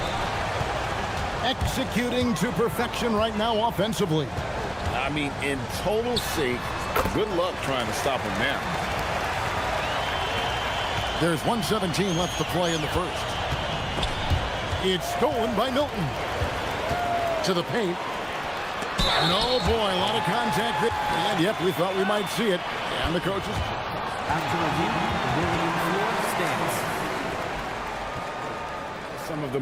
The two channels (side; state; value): both; identical; correlation 1.00